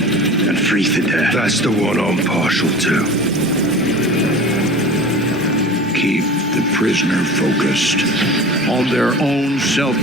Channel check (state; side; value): normal; both; correlation 0.37